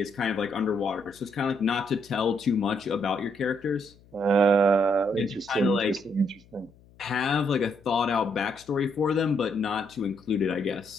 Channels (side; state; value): left; noise; hum, 27 dB below the sound